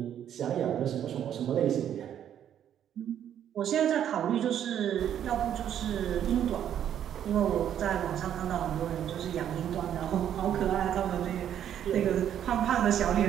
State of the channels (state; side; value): quieter; left; 10.0 dB